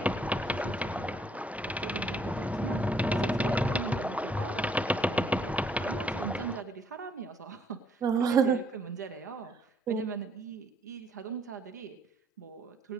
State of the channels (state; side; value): normal; both; correlation 0.67